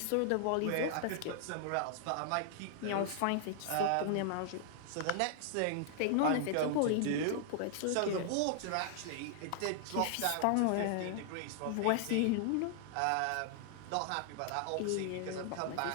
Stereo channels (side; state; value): both; different; correlation -0.01